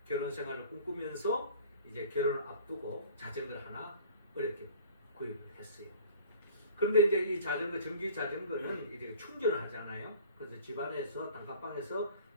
결혼 생활을 꿈꾸면서 이제 결혼을 앞두고 자전거를 하나 어렵게 구입을 했어요. 그런데 이제 이 자전거, 전기 자전거는 이제 충전을 하잖아요. 그래서 집안에서 단칸방에서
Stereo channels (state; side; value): inverted; both; correlation -0.46